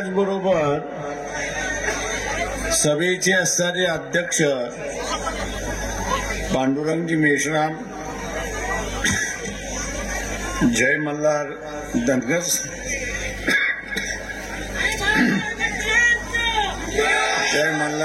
सभेचे असणारे अध्यक्ष पांडुरंगजी मेश्राम, जय मल्हार धनगर, जय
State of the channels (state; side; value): identical; both; correlation 1.00